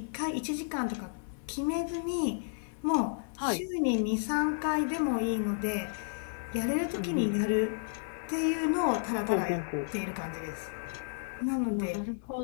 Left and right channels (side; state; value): right; silent; digital silence